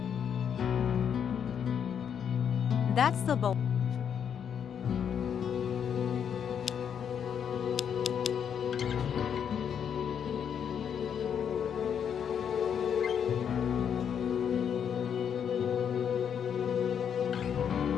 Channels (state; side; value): quieter; right; 8.0 dB